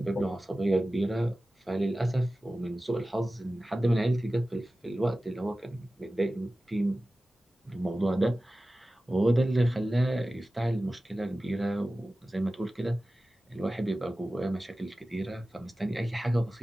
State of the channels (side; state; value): both; normal; correlation 0.96